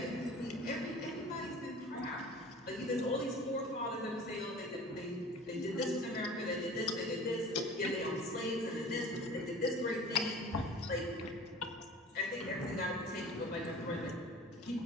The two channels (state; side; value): normal; both; correlation 0.42